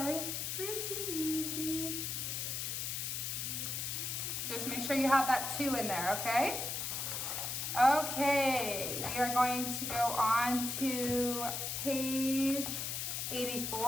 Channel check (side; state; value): left; noise; hiss, 2 dB below the sound